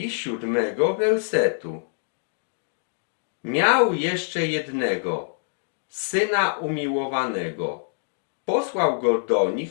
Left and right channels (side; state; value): right; silent; digital silence